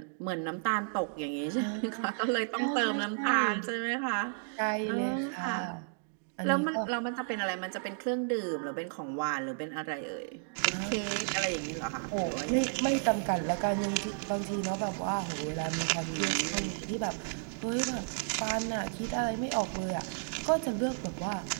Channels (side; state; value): left; silent; digital silence